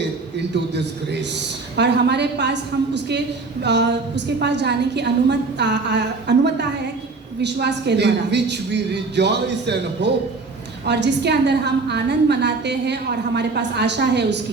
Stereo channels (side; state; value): left; quieter; 3.9 dB